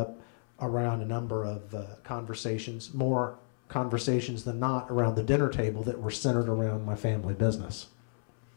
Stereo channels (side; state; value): right; silent; 57 dB below the other